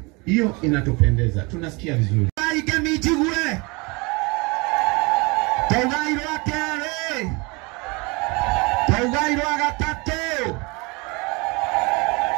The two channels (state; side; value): quieter; left; 27.5 dB